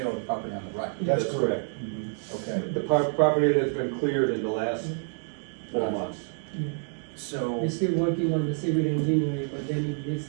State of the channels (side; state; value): left; silent; 57 dB below the other